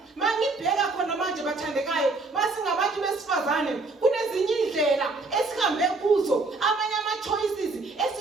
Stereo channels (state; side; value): quieter; left; 3.5 dB